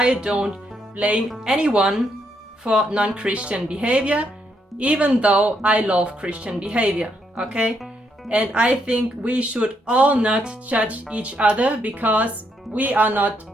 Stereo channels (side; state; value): both; normal; correlation 0.76